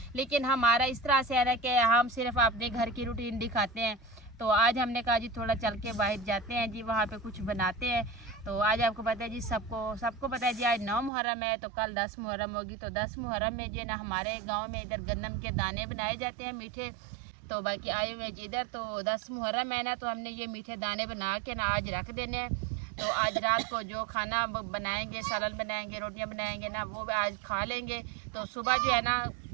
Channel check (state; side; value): drops out; left; at 11.1 s